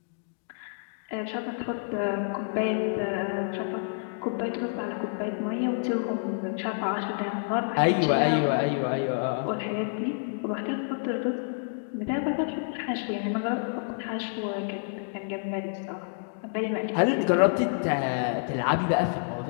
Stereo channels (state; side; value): silent; right; digital silence